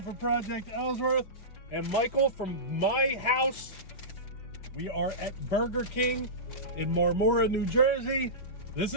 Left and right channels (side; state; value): right; late; 5.3 ms